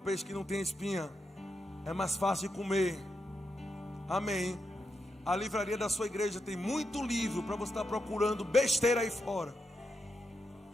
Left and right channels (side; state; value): both; normal; correlation 0.84